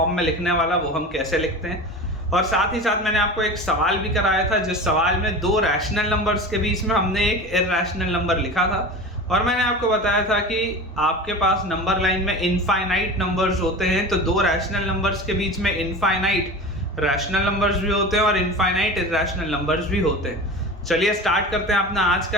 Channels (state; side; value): normal; both; correlation 0.32